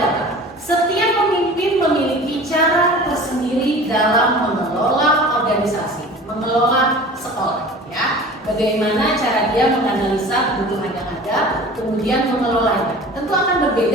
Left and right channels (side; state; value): both; normal; correlation 0.41